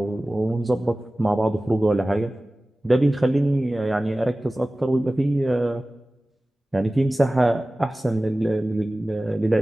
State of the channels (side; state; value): both; normal; correlation 0.97